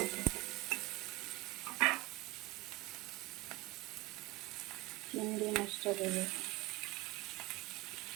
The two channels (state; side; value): quieter; left; 20.9 dB